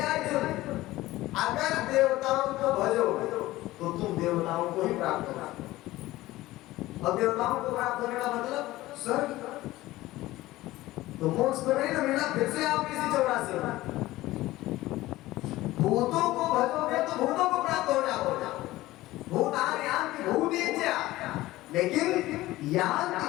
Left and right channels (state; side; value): quieter; right; 17.3 dB